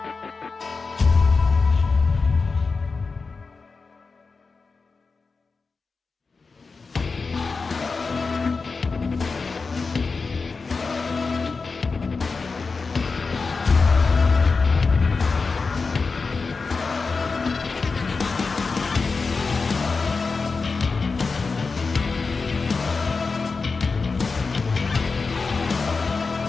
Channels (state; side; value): quieter; right; 4.4 dB